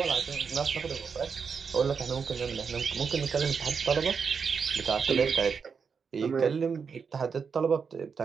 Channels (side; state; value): left; quieter; 5.9 dB